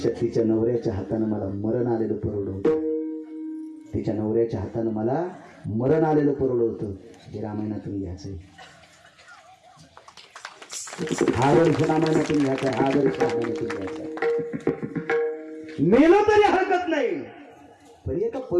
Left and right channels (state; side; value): identical; both; correlation 1.00